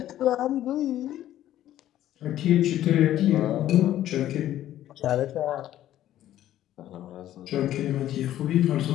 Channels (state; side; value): quieter; right; 12.8 dB